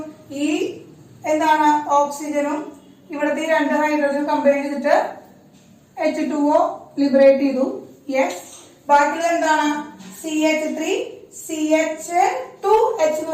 ഈ എന്താണ് ഓക്സിജനും ഇവിടുത്തെ രണ്ട് ഹൈഡ്രജനും കമ്പൈൻ ചെയ്തിട്ട് H2O ലിബറേറ്റ് ചെയ്തു. യെസ്, ബാക്കിയുള്ളത് എന്താണ്? CH3 CH2H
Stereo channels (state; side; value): identical; both; correlation 1.00